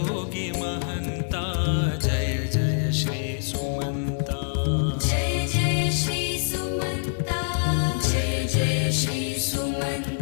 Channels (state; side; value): silent; right; 59 dB below the other